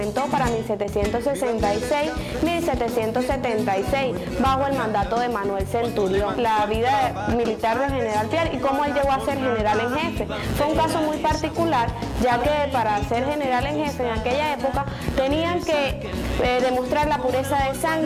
para 1766-1776 bajo el mandato de Manuel Centurión. La vida militar del general Piar y cómo él llegó a ser general en jefe fue un caso muy particular, ya que para ser general en jefe en aquella época tenían que demostrar la pureza de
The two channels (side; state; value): both; identical; correlation 1.00